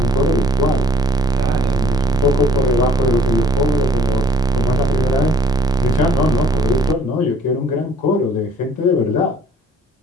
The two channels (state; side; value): normal; both; correlation 0.57